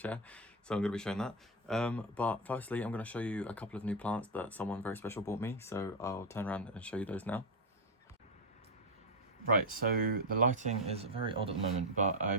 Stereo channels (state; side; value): normal; both; correlation 0.06